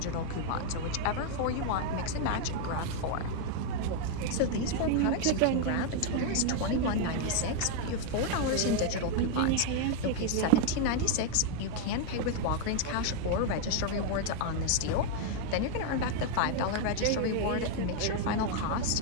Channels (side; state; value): both; different; correlation 0.00